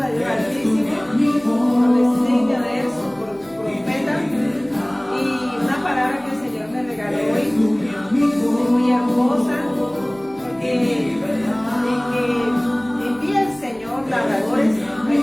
de Dios Altísimo, adolescencia de él, profeta, y una palabra que el Señor me regaló hoy es muy hermosa, porque envía el Señor labradores,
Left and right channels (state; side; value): noise; left; hum, 29 dB below the sound